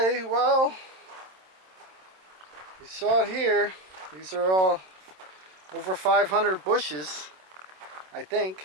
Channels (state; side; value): late; left; 27 ms